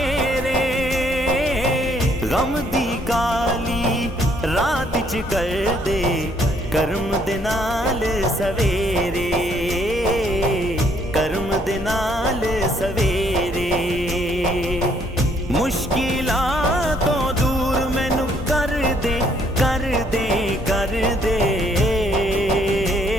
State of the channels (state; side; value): normal; both; correlation 0.67